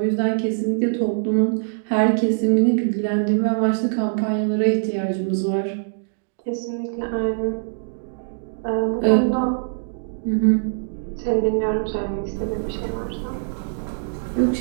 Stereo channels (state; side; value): silent; left; digital silence